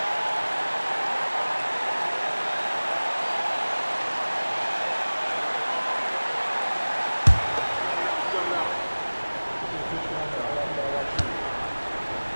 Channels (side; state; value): both; inverted; correlation -1.00